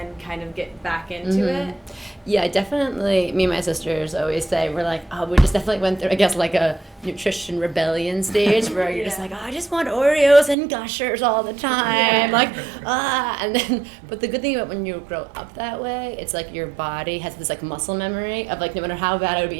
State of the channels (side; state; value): left; drops out; at 10.6 s